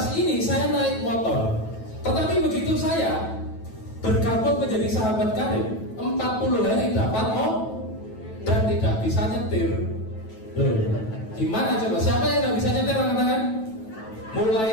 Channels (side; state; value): right; late; 9.2 ms